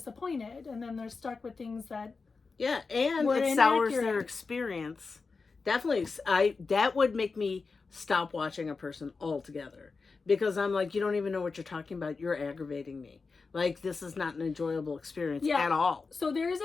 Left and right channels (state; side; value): quieter; right; 4.4 dB